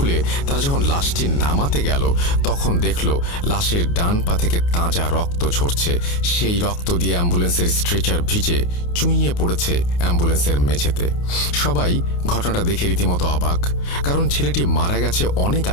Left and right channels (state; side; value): late; right; 29 ms